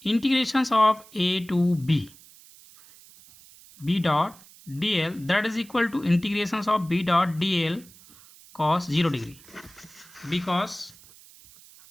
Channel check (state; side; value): noise; right; hiss, 23 dB below the sound